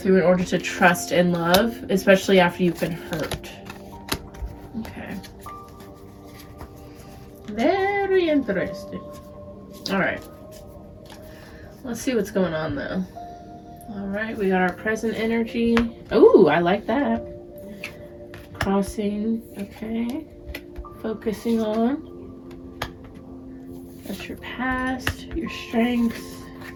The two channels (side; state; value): both; identical; correlation 1.00